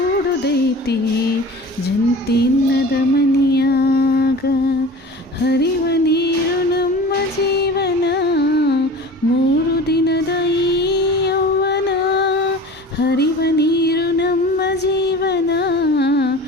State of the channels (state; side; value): normal; both; correlation 0.38